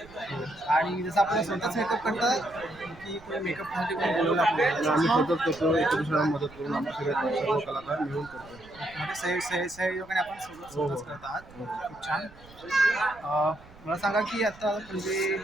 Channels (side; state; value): right; noise; rumble, 23 dB below the sound